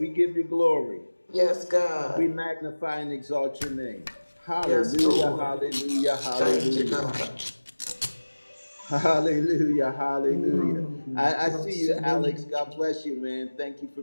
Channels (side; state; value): both; inverted; correlation -1.00